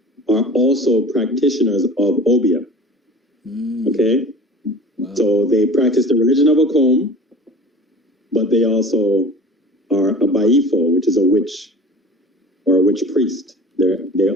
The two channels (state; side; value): normal; both; correlation 0.40